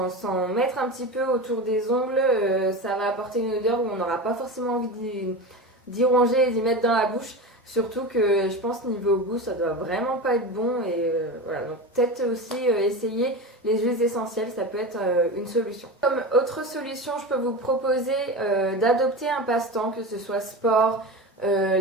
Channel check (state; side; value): normal; both; correlation 0.25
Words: mettre un petit peu autour des ongles, ça va apporter une odeur où on n'aura pas forcément envie d'y ronger et d'y mettre dans la bouche. Surtout que je pense niveau goût, ça doit vraiment pas être bon. Et voilà, donc peut-être aussi essayer les huiles essentielles, ça peut être une solution. Comme autre solution, je peux vous proposer d'adopter un passe-temps, que ce soit sport,